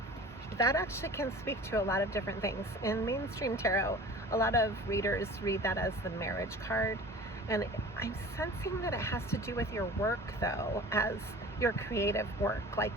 That actually can speak to a lot of different things. In mainstream tarot, a lot of readers read that as the marriage card, and I'm sensing that it has to do with your work, though, as your creative work, like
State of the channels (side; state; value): both; normal; correlation 0.41